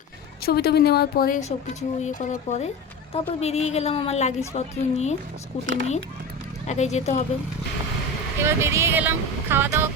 ছবি টবি নেওয়ার পরে সব কিছু ইয়ে করার পরে তারপর বেরিয়ে গেলাম আমার লাগেজপত্র নিয়ে, স্কুটি নিয়ে। একাই যেতে হবে। এবার বেরিয়ে গেলাম, খাওয়া দাওয়া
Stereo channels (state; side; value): normal; both; correlation 0.27